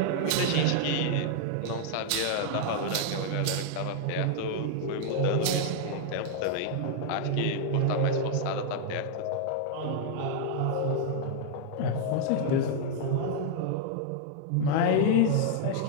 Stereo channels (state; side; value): different; both; correlation -0.01